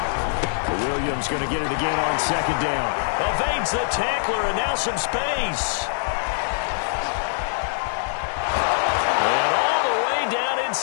Williams going to get it again on 2nd down. Evades the tackler and now some space. And all the way down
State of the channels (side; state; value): right; silent; digital silence